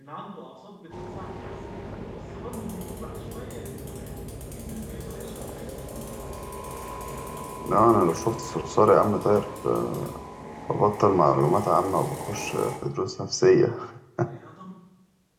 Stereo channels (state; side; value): identical; both; correlation 1.00